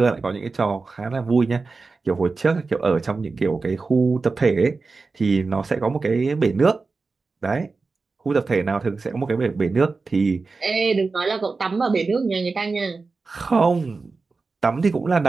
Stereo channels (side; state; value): left; quieter; 4.1 dB